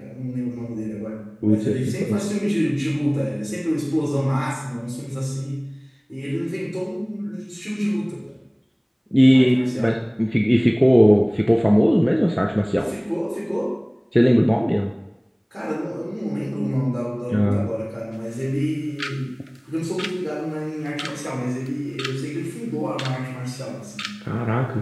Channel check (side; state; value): both; identical; correlation 1.00